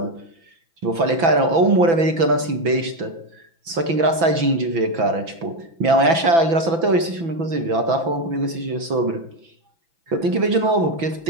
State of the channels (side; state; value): left; late; 6.0 ms